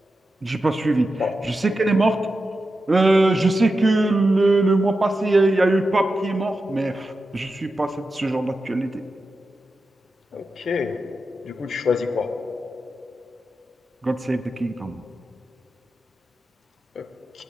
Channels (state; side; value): normal; both; correlation 0.90